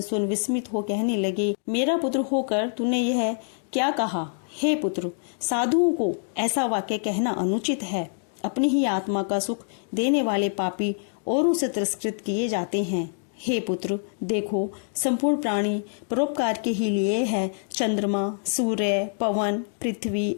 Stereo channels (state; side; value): silent; right; digital silence